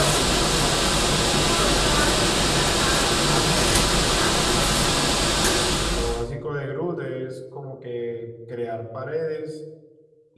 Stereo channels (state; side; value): identical; both; correlation 1.00